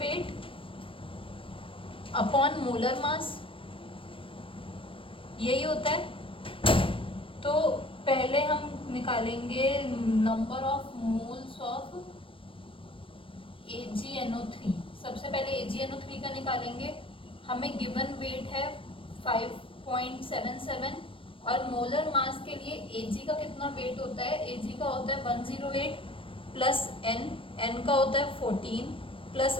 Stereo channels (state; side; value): late; right; 0.25 ms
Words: upon molar mass, यही होता है। तो पहले हम निकालेंगे number of moles of AgNO3। सबसे पहले AgNO3 का निकालेंगे। हमें गिवन वेट है 5.77 और मोलर मास के लिए Ag का कितना वेट होता है, Ag का होता है 108 प्लस N। एन का होता है 14 प्लस